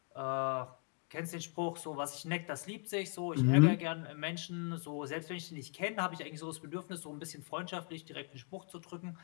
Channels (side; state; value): right; quieter; 35.5 dB